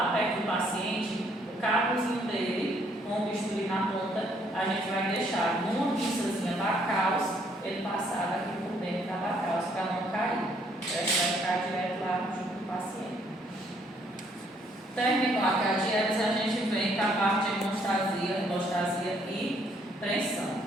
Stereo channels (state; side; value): normal; both; correlation 0.67